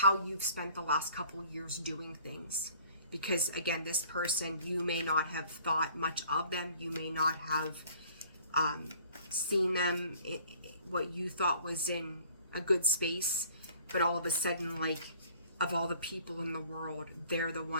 you've spent the last couple years doing things. Because again, this person, you may not have thought much of them. You may not have seen them what you thought was in a good space, but all of a sudden, like, of all the people in the world, they're the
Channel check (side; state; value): both; inverted; correlation -0.55